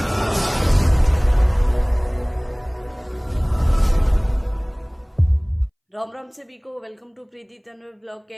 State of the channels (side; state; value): both; identical; correlation 1.00